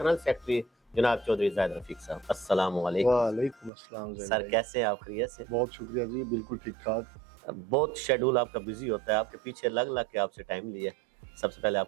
सेक्रेटरी जनाब चौधरी ज़ाहिद रफ़ीक साहब। अस्सलामु अलैकुम। वालेकुम अस्सलाम सर, कैसे हैं आप? खैरियत से? बहुत शुक्रिया जी, बिल्कुल ठीक ठाक। बहुत शेड्यूल आपका बिजी होता है, आपके पीछे लग लग के आपसे टाइम लिया। सबसे पहले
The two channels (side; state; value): left; drops out; at 3.7 s